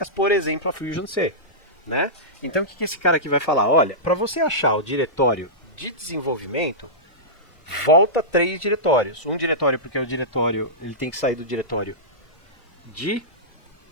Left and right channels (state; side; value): late; right; 1.5 ms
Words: por exemplo, a Fusion C, né? Então o que esse cara aqui vai falar? Olha, para você achar o diretório de desenvolvimento, volta 3 diretórios. Um diretório porque o diretório, ele tem que sair do diretório de